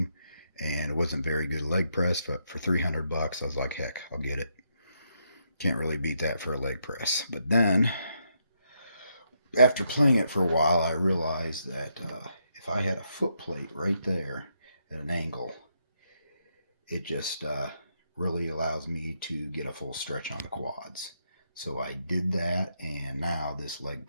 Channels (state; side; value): inverted; both; correlation -0.79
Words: and it wasn't very good leg press. But for $300, I was like, heck, I'll get it. Can't really beat that for a leg press. But then, after playing it for a while, I realized that if I had a foot plate right there at an angle, it just really allows me to get a full stretch on the quads. So I did that, and now this leg